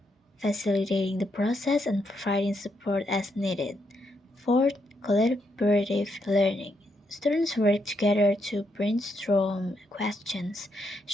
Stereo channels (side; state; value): both; normal; correlation 0.79